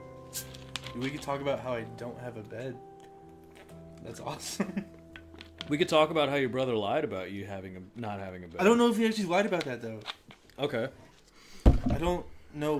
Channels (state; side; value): identical; both; correlation 1.00